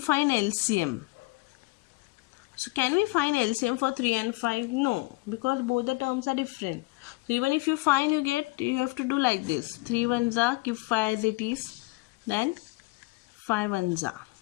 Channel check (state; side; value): quieter; right; 24.2 dB